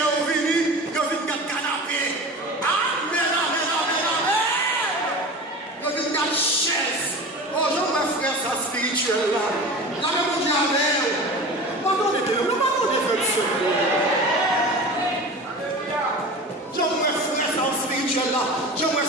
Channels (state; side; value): normal; both; correlation 0.34